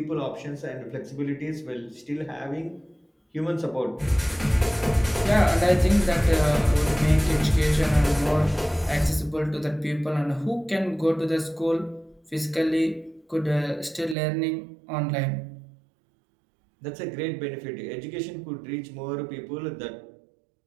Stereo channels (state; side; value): drops out; left; at 14.2 s